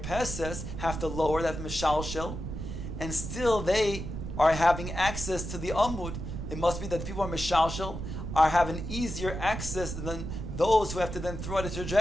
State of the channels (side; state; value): right; noise; rumble, 6 dB below the sound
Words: have to lower that mishalshel, and still they are having access to the amud. It must be that the people are mishalshel, are having easier access than those who have to then throw out a